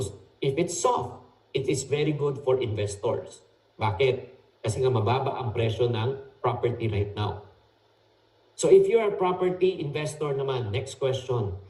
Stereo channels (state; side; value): identical; both; correlation 1.00